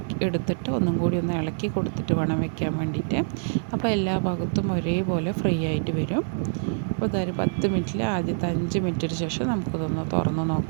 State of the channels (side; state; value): left; silent; 61 dB below the other